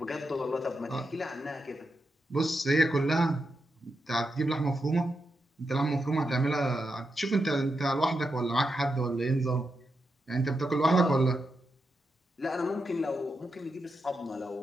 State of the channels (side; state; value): both; normal; correlation 0.86